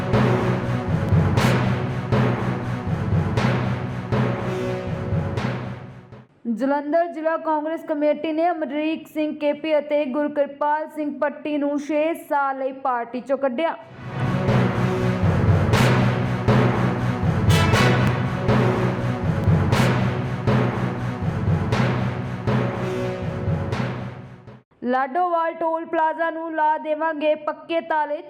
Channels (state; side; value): identical; both; correlation 1.00